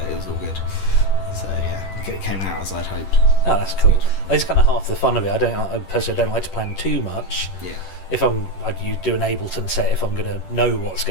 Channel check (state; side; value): late; right; 10 ms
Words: good. So yeah, it came out as I'd hoped. Oh, that's cool. That's kind of half the fun of it. I personally don't like to plan too much. Yeah. If you do an Ableton set if I'm going to know what's